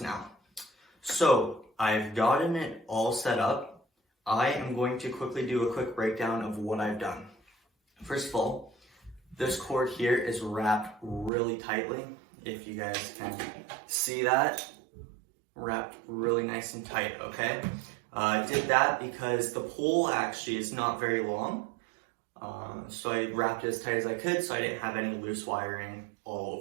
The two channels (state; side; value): drops out; left; at 11.3 s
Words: now. So I've gotten it all set up. I am going to quickly do a quick breakdown of what I've done. First of all, this cord here is wrapped really tightly. If you guys can see that, wrapped really nice and tight, okay? I did that because the pole actually is not very long. So I wrapped it as tight as I could so I didn't have any loose wiring all